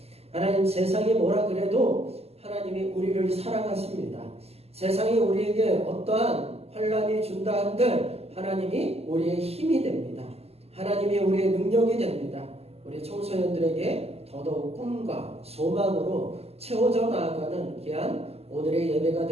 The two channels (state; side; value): late; left; 0.29 ms